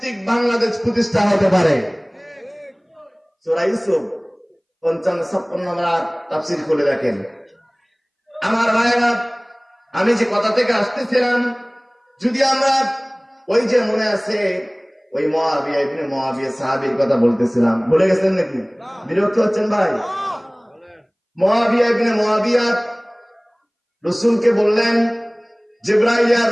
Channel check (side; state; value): both; identical; correlation 1.00